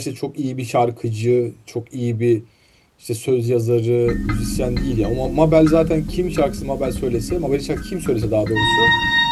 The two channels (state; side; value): identical; both; correlation 1.00